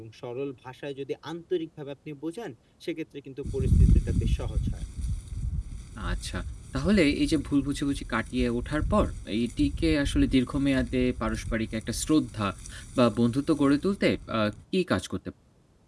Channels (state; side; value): identical; both; correlation 1.00